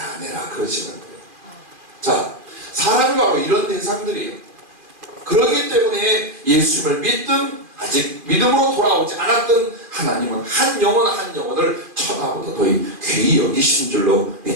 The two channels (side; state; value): left; late; 2.4 ms